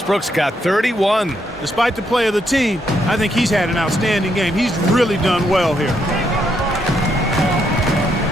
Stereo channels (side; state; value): both; normal; correlation 0.77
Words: got 31. Despite the play of the team, I think he's had an outstanding game. He's really done well here.